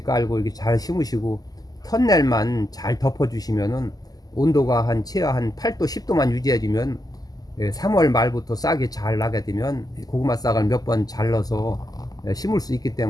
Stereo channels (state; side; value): late; right; 0.18 ms